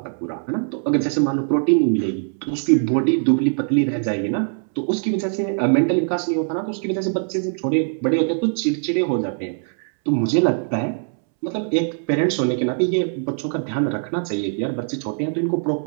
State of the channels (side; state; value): left; silent; 64 dB below the other